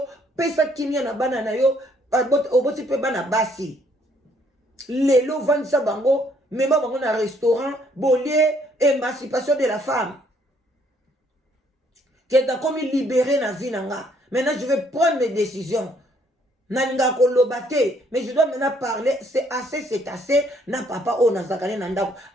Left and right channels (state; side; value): normal; both; correlation 0.66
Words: pesa kimia na bana na yo, oboti pe bana basi. Lelo vandisa bango, mema bango na restaurant, bolie, émancipation de la femme. Que t'as comme libéré na vie nanga. Maintenant, je vais prendre mes décisions. Nalinga kolobate, mais je dois maintenant parler. C'est assez. Na papa o na zakane nandako.